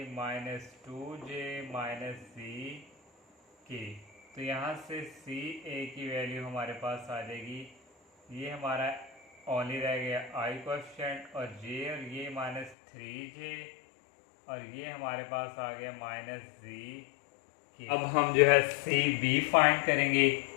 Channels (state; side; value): drops out; right; at 12.8 s